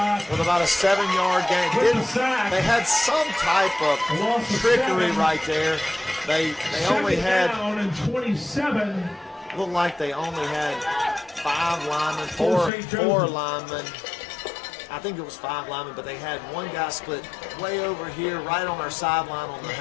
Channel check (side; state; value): right; drops out; at 12.7 s